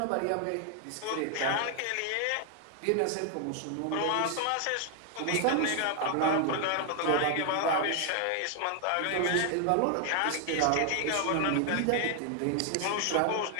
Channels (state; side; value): different; both; correlation 0.00